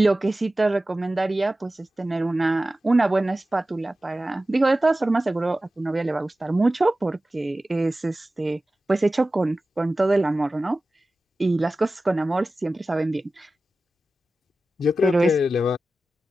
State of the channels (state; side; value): normal; both; correlation 0.95